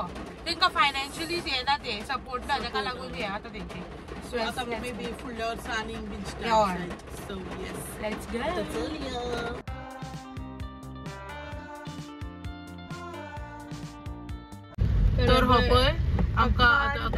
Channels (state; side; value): identical; both; correlation 1.00